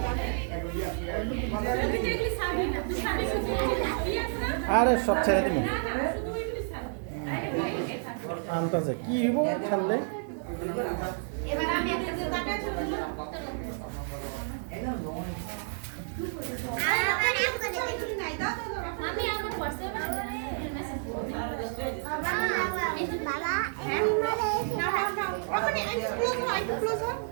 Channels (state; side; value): silent; left; digital silence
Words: আরে সব ছেড়ে দিন আনতাছে কি হইব ছাড়লে এবার আমি একটা যে টাকা ছিল আমি আমার হোয়াটসঅ্যাপে মেসেজ করব বাবা